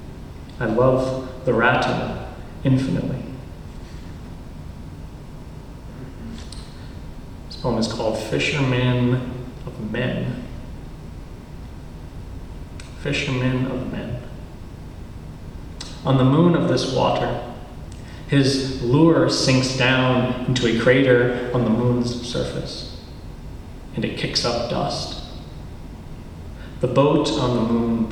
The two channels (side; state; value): both; identical; correlation 1.00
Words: I love the rattle infinitely. This poem is called Fisherman of Men. Fisherman of Men. On the moon of this water, his lure sinks down into a crater on the moon's surface, and it kicks up dust. The boat on the moon